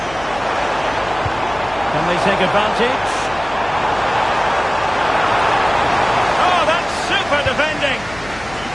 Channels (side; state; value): left; noise; hum, 18 dB below the sound